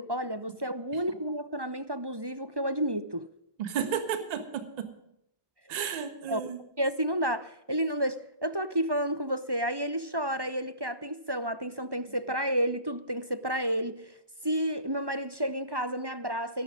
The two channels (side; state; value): left; late; 1.1 ms